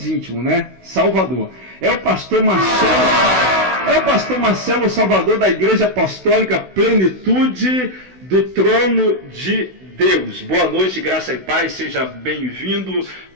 íntimos, né? Salvador. É o pastor Marcelo Salvador, da Igreja Apostólica Plenitude do Trono de Deus. Boa noite, graça e paz, seja bem-vindo,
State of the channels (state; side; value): late; left; 16 ms